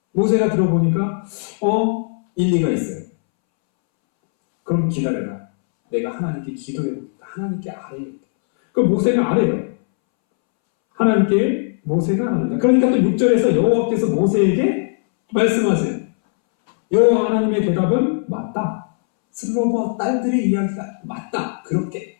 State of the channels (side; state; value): right; silent; 66 dB below the other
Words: 모세가 들어보니까 일리가 있어요. 그럼 기다려라. 내가 하나님께 기도해보겠다. 하나님께 아뢰겠다. 그럼 모세가 아뢰요. 하나님께 모세가 아뢰다. 그러니까 또 6절에서 여호와께서 모세에게 말씀하세요. 여호와 하나님의 대답은 맞다. 슬로보아 딸들의 이야기가 맞다. 그렇게